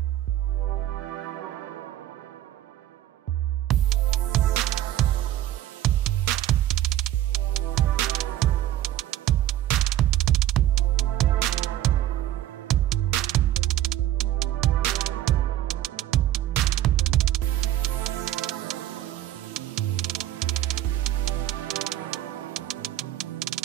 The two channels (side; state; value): left; quieter; 13.1 dB